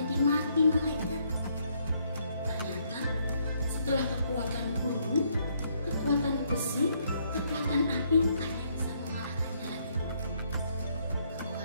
mati, malaikat. Ternyata setelah kekuatan gunung, kekuatan besi, kekuatan api, ada yang bisa mengalahkannya lagi.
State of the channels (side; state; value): both; inverted; correlation -0.71